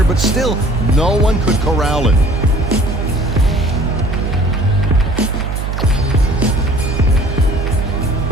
but still, no one could corral him.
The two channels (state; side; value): noise; right; hum, 2 dB below the sound